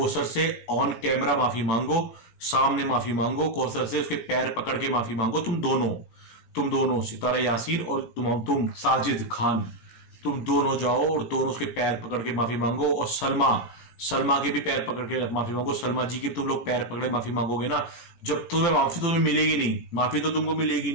से ऑन कैमरा माफी मांगो, सामने माफी मांगो, कौसर से उसके पैर पकड़ के माफी मांगो। तुम दोनों सितारा यासीन और तुम साजिद खान, तुम दोनों जाओ और दोनों उसके पैर पकड़ के माफी मांगो। और सलमा के भी पैर पकड़ के माफी मांगो। सलमा जी के तुम लोग पैर पकड़े माफी मांगोगे ना, जब तुम्हें माफी तुम्हें मिलेगी नहीं, माफी तो तुमको मिलेगी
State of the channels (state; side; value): late; right; 17 ms